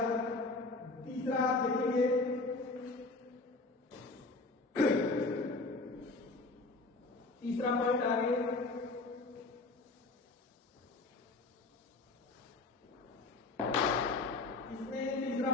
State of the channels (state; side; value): quieter; right; 3.4 dB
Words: तीसरा आप देखेंगे तीसरा पॉइंट आगे इसमें तीसरा